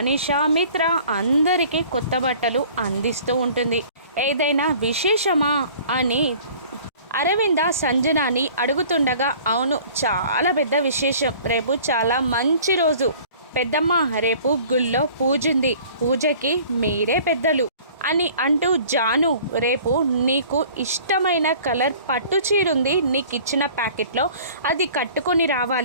మిత్ర అందరికీ కొత్త బట్టలు అందిస్తూ ఉంటుంది. ఏదైనా విశేషమా అని అరవింద సంజనాని అడుగుతుండగా, అవును, చాలా పెద్ద విశేషం. రేపు చాలా మంచి రోజు పెద్దమ్మ, రేపు గుళ్ళో పూజుంది, పూజకి మీరే పెద్దలు అని అంటూ, జాను, రేపు నీకు ఇష్టమైన కలర్ పట్టు చీరుంది, నీకు ఇచ్చిన ప్యాకెట్లో అది కట్టుకొని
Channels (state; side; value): inverted; both; correlation -0.49